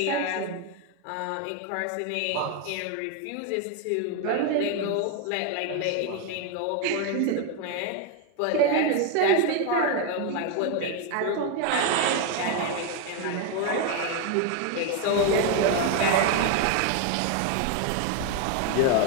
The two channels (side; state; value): both; different; correlation 0.01